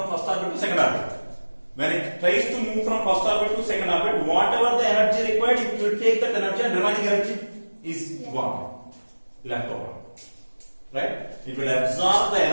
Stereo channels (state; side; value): inverted; both; correlation -1.00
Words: first orbit to second orbit. When it tries to move from first orbit to second orbit, whatever the energy required, it will take that energy and remaining energy is gone, left over, right? It will absorb the